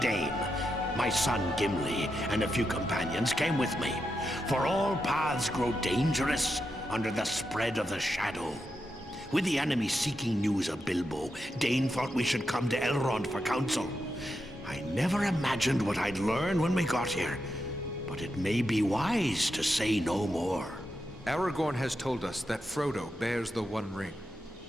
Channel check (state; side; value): normal; both; correlation 0.86